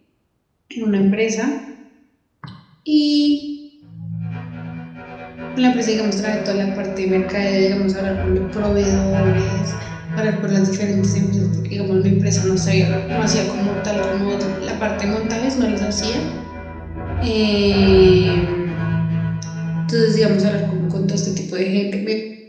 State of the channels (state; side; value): identical; both; correlation 1.00